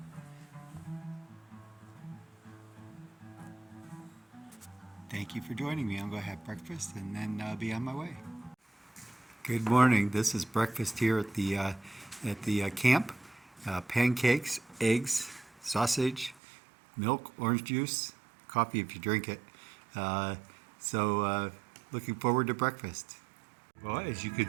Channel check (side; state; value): left; drops out; at 16.4 s